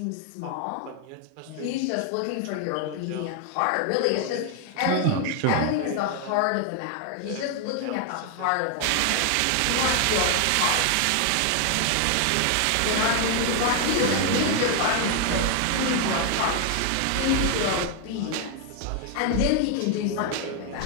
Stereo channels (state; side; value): different; both; correlation 0.00